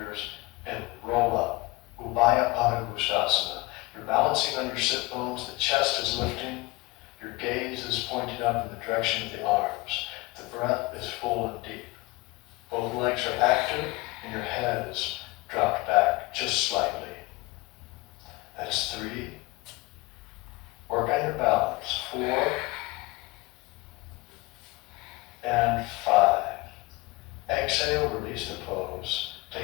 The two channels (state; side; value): quieter; right; 22.8 dB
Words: and roll up. Ubaya Pada Gustasana. You're balancing on your sit bones, the chest is lifting, your gaze is pointing up in the direction of the arms. The breath is full and deep. Both legs are active, and your head is dropped back just slightly. That's 3. Work on your balance. 4 and 5. Exhale, release the pose.